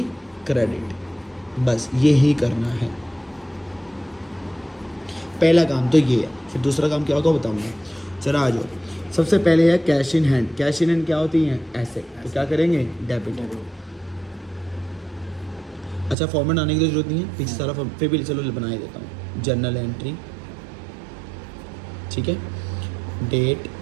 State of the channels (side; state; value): left; drops out; at 16.2 s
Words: क्रेडिट। बस यही करना है, पहला काम तो ये है। फिर दूसरा काम क्या होगा बताऊंगा, चला आ जाओ। सबसे पहले है cash in hand. Cash in hand क्या होती हैं, एसेट, तो क्या करेंगे, डेबिट। अच्छा फॉर्मेट आने की तो जरूरत नहीं है, पीछे सारा फॉर्म फिर भी चलो बना ही देता हूँ। जर्नल एंट्री, ठीक है, डेट,